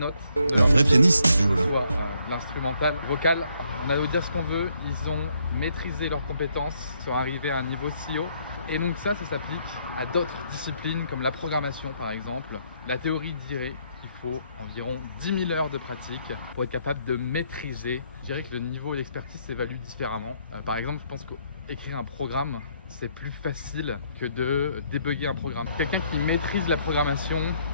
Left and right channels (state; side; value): inverted; both; correlation -0.71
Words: Un vrai pianiste, Jules. Soit l'instrumental, vocal. On a beau dire ce qu'on veut, ils ont maîtrisé leurs compétences, sont arrivés à un niveau si haut. Et donc ça s'applique à d'autres disciplines comme la programmation par exemple. La théorie dirait qu'il faut environ 10 000 heures de pratique pour être capable de maîtriser. Je dirais que le niveau d'expertise s'évalue différemment. Par exemple, je pense qu'écrire un programme, c'est plus facile que de débugger un programme. Quelqu'un qui maîtrise la programmation,